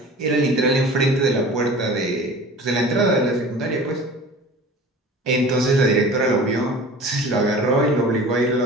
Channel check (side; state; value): both; normal; correlation 0.40